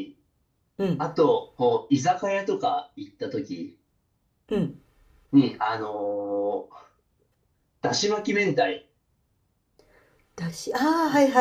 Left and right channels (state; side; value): identical; both; correlation 1.00